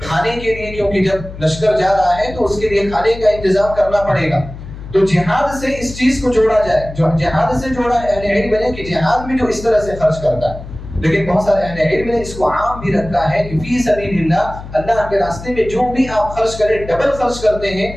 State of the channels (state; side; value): noise; left; hum, 13 dB below the sound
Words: کے لیے، کیونکہ جب لشکر جا رہا ہے تو اس کے لیے کھانے کا انتظام کرنا پڑے گا. تو جہاد سے اس چیز کو جوڑا جائے، جو جہاد سے جوڑا ہے. اہل علم نے کہ جہاد میں جو اس طرح سے خرچ کرتا ہے، لیکن بہت سارے اہل علم نے اس کو عام بھی رکھا ہے کہ فی سبیل اللہ، اللہ کے راستے میں جو بھی آپ خرچ کریں، ڈبل خرچ کرتے ہیں،